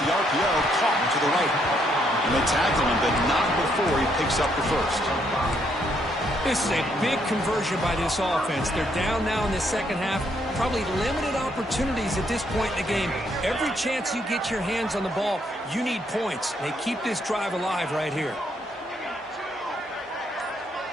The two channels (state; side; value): normal; both; correlation 0.72